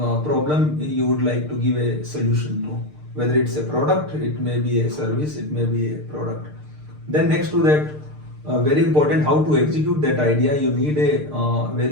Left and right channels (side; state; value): left; late; 6.6 ms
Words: you would like to give a solution to, whether it's a product, it may be a service, it may be a product. Then next to that, very important, how to execute that idea. You need a